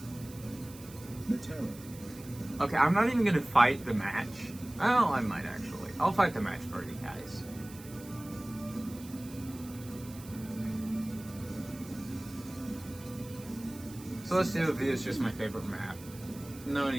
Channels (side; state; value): right; noise; hiss, 18 dB below the sound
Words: Matera. Okay, I'm not even gonna fight the match. Oh, I might actually. I'll fight the match for you guys. Celestia V is just my favorite map. No